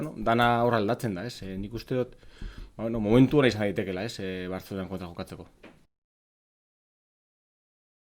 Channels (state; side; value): identical; both; correlation 1.00